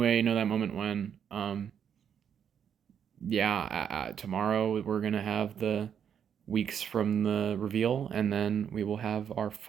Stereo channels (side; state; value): left; quieter; 8.2 dB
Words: you know that moment when, yeah, tomorrow we're gonna have the weeks from the reveal, and then we will have our